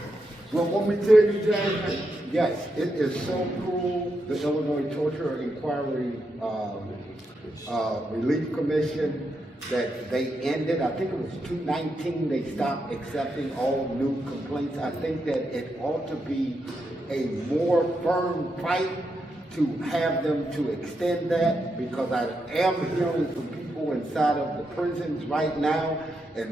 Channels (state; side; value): normal; both; correlation 0.83